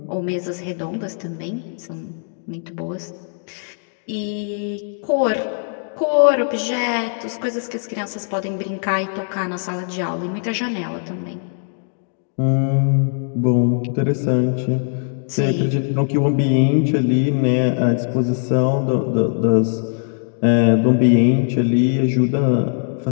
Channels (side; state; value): right; silent; digital silence